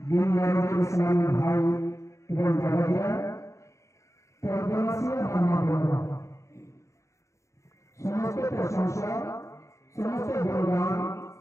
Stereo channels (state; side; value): late; right; 0.14 ms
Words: দিন ইসলামী ভাই এবং দাদাজিরা, সমস্ত প্রশংসা, সমস্ত গুণগান